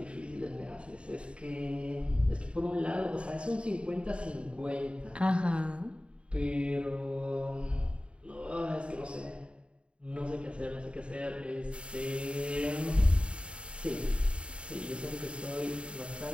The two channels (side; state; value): left; late; 0.056 ms